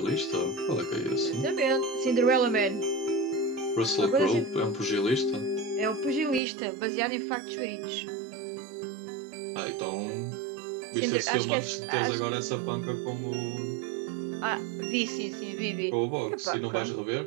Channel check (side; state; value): left; drops out; at 6.4 s